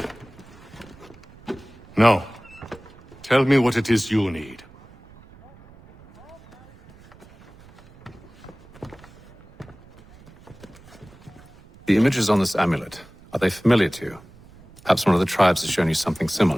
Now, tell me what it is you need. The images on this amulet, are they familiar to you? Perhaps one of the tribes has shown you something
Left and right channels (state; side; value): noise; right; rumble, 24 dB below the sound